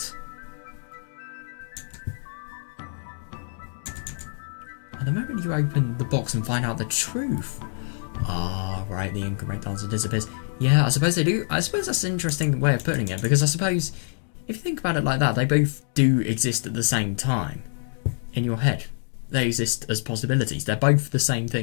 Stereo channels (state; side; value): silent; right; 61 dB below the other